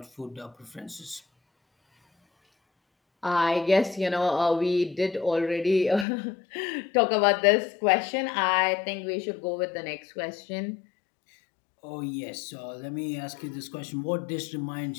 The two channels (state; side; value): drops out; right; at 6.1 s